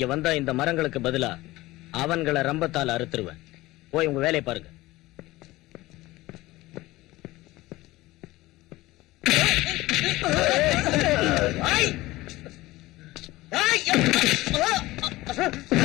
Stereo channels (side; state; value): right; quieter; 18.7 dB